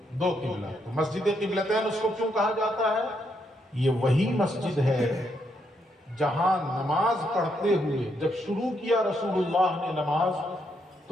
دو قبلہ. تو مسجد قبلتین اس کو کیوں کہا جاتا ہے؟ یہ وہی مسجد ہے جہاں نماز پڑھتے ہوئے جب شروع کیا رسول اللہ نے نماز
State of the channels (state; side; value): normal; both; correlation 0.77